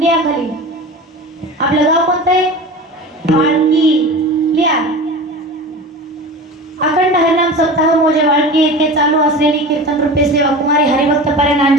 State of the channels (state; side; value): normal; both; correlation 0.33